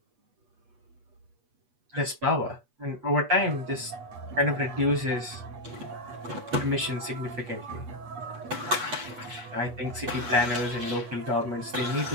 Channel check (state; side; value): late; left; 8.3 ms